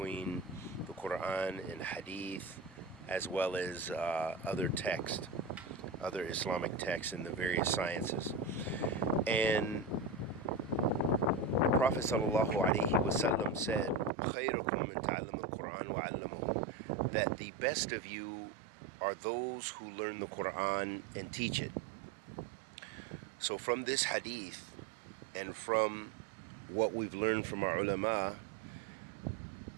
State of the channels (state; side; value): drops out; left; at 14.1 s